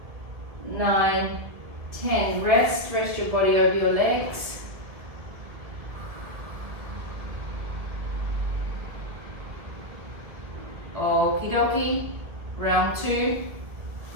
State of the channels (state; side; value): late; left; 1.8 ms